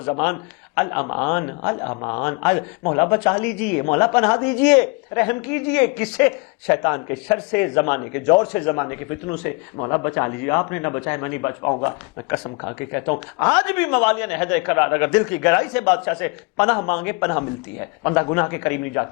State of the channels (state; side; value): quieter; right; 29.7 dB